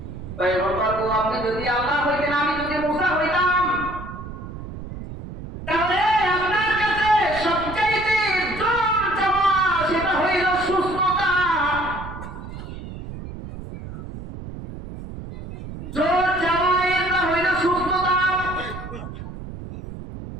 পয়গম্বর গো, আপনি যদি আল্লাহ হইতেন, আমি যদি মুসা হইতাম, তাহলে আপনার কাছে সবচাইতে জোর চাওয়া সেটা হইল সুস্থতা। জোর চাওয়া এটা হইল সুস্থতা।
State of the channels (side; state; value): right; noise; rumble, 11 dB below the sound